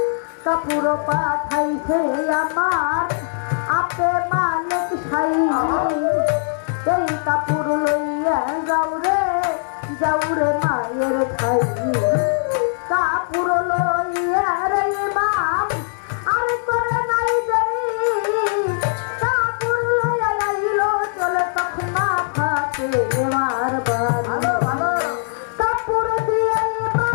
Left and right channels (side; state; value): right; silent; 65 dB below the other